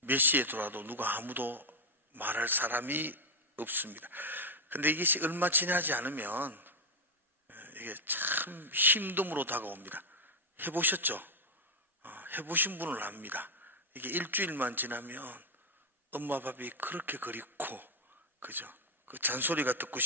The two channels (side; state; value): both; normal; correlation 0.04